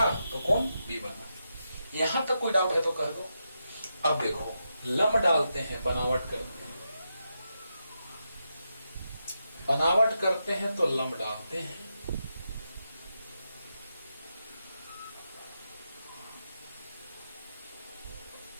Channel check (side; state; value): both; inverted; correlation -0.86